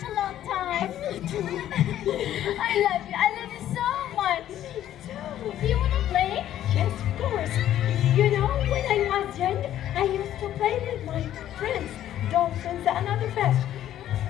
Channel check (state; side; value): quieter; right; 11.9 dB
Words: a long time. I love you. I love you so much. Do you want to play? Yes, of course. You know, when I was young, I used to play with my friends, dolphins and other fish.